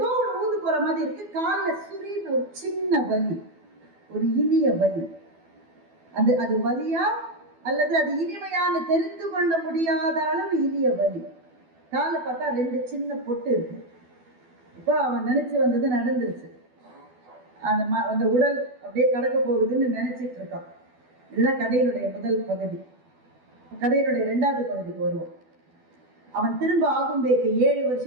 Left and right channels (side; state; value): left; late; 12 ms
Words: ஒரு ஊந்து போற மாதிரி இருக்கு. காலில் சுரின்னு ஒரு சின்ன வலி, ஒரு இனிய வலி. அது வலியா அல்லது அது இனிமையான தெரிந்து கொள்ள முடியாத அளவு இனிய வலி. காலில் பார்த்தா 2 சின்ன பொட்டு இருக்கு. இப்போ அவன் நினைச்சு வந்தது நடந்துருச்சு. அந்த உடல் அப்படியே கடக்க போகுதுன்னு நினைச்சிட்டு இருக்கான். இதுதான் கதையினுடைய முதல் பகுதி. கதையினுடைய 2வது பகுதிக்கு வருவோம். அவன் திரும்ப ஆகும்பேக்கு 7